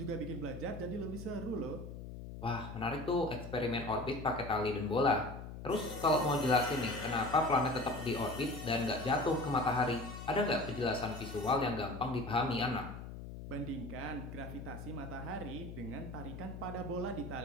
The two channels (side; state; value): left; noise; hum, 10 dB below the sound